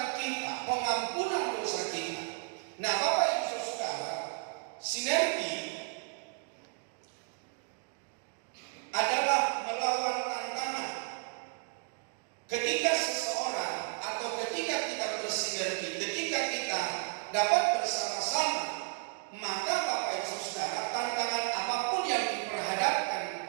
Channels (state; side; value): quieter; left; 37.2 dB